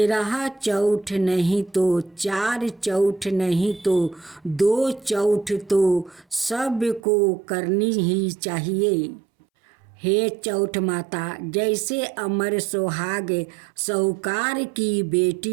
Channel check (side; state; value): left; drops out; at 7.0 s